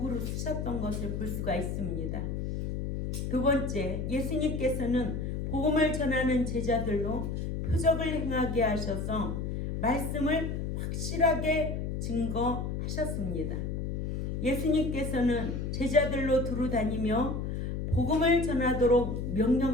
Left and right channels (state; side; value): noise; left; hum, 3 dB below the sound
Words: 쓰셨던 것을 볼 수가 있습니다. 두 번째, 예수님께서는 복음을 전하는 제자들로 표적을 행하게 하셔서 말씀을 확실하게 증거하셨습니다. 예수님께서는 제자들로 두루 다니며 복음을 전하도록